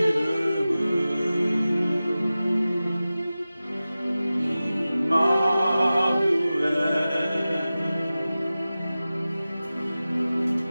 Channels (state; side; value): inverted; both; correlation -0.96